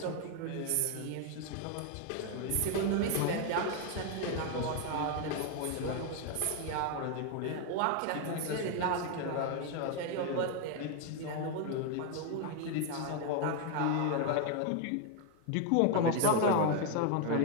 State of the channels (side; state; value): both; different; correlation 0.01